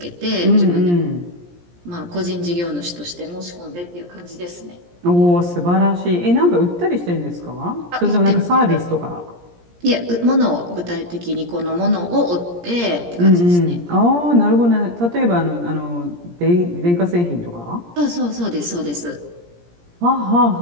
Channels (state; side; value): late; left; 17 ms